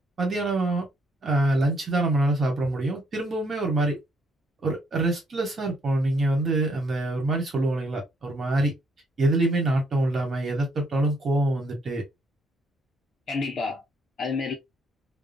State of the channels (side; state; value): both; normal; correlation 0.71